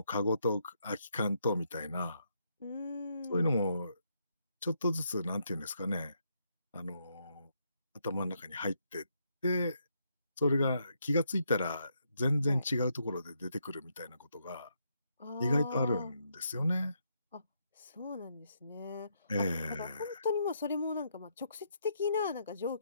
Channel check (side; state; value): both; inverted; correlation -0.77